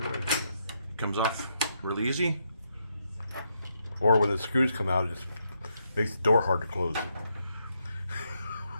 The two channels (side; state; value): both; inverted; correlation -0.79